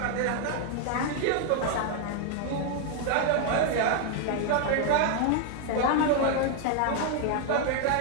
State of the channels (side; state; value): both; different; correlation 0.00